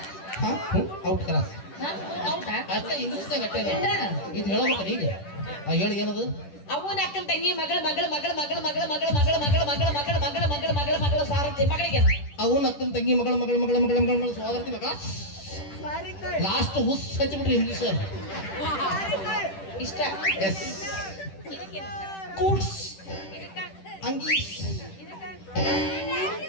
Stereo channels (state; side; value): late; right; 10 ms